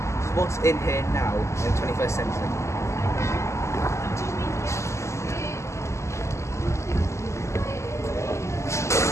what's in here now in the 21st century.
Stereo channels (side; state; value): right; late; 0.13 ms